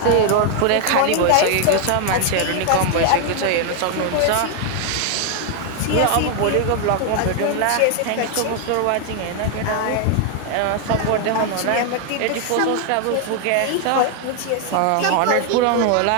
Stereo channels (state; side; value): different; both; correlation 0.00